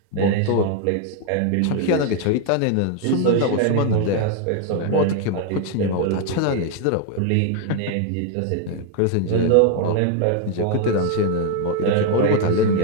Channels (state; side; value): different; both; correlation 0.00